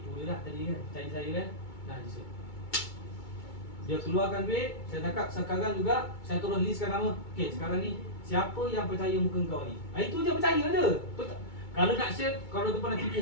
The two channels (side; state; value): right; late; 2.2 ms